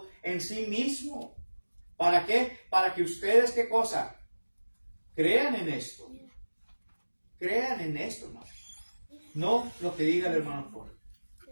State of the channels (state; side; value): inverted; both; correlation -1.00